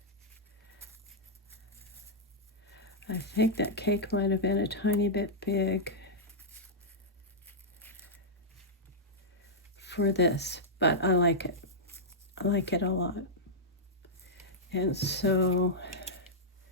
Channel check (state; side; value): normal; both; correlation -0.09